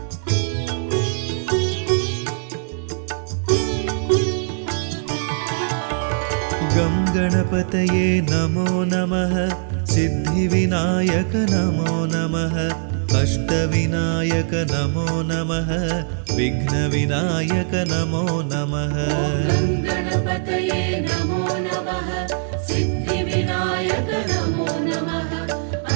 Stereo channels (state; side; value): silent; left; 65 dB below the other